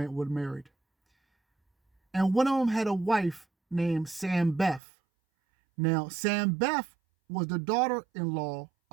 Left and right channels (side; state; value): left; drops out; at 4.8 s